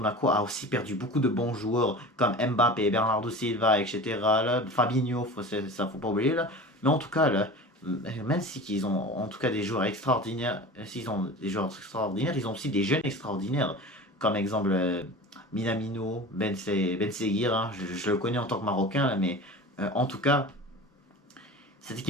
a aussi perdu beaucoup de bons joueurs comme Mbappé, Bernardo Silva, etc. Là, Fabinho, ça faut pas oublier là. Mais en tout cas là, même si ils ont en tout cas des joueurs extraordinaires, s'ils ont des joueurs extraordinaires, ils ont aussi des jeunes extraordinaires. Comme exemple Minamino, Ben Seguir, hein, je le connais en tant que Marocain, là, mais en tout cas, cette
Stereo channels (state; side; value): normal; both; correlation 0.35